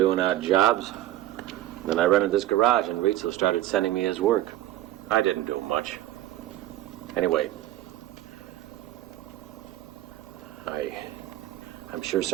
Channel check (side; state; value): left; quieter; 14.4 dB